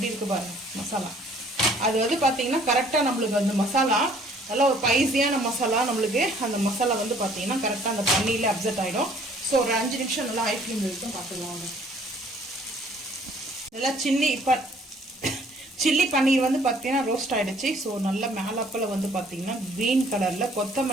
இருக்கு பாருங்க மசாலா. அது வந்து பார்த்தீங்கன்னா கரெக்டாக நம்மளுக்கு அந்த மசாலா நல்லா ஒரு ஸ்பைசியான மசாலா, நம்மளுக்கு அந்த மசாலா வந்து பார்த்தீங்கன்னா கரெக்டாக அந்த பன்னீரில் அப்செட் ஆகிடும். ஸோ ஒரு 5 நிமிஷம் நல்லா ஹை ஃப்ளேம் வரைக்கும் பார்த்துக்கலாம். நல்லா சில்லி பன்னீர் வந்து பார்த்தீங்கன்னா ரோஸ்ட் ஆகிடுச்சு. ஸோ நல்லா மேலப்பில் வந்து பார்த்தீங்கன்னா க்ரீன் கலரில்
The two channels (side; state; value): both; normal; correlation 0.58